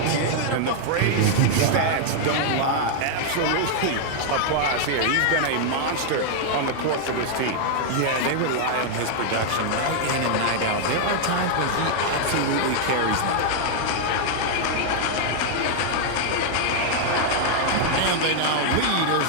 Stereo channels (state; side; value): different; both; correlation 0.00